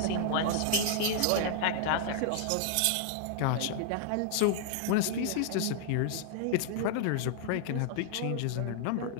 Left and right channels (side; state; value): both; different; correlation 0.00